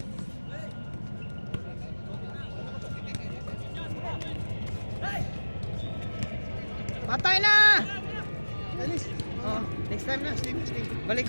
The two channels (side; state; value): both; inverted; correlation -1.00